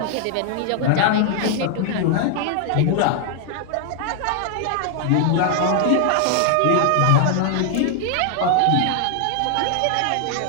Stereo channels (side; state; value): both; different; correlation 0.00